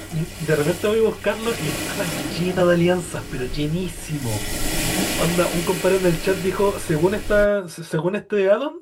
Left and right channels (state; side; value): identical; both; correlation 1.00